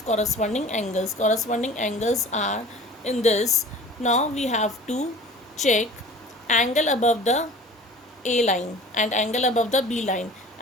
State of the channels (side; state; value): both; normal; correlation 0.43